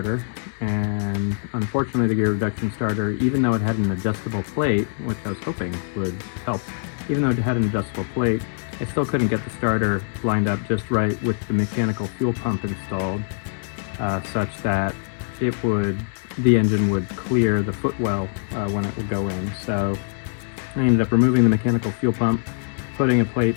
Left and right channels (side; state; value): right; silent; digital silence